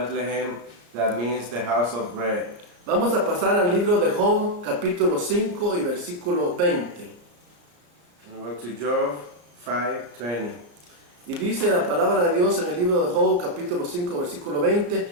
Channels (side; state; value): left; late; 33 ms